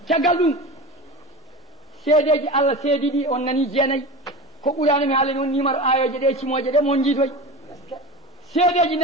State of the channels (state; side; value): normal; both; correlation 0.29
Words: caggal ɗum seedeji Allah seedi ɗi on nani jeenayyi ko ɓurano mi haala noon numéro ayoje ɗe cimoje ɗe mon jiitoy seedeji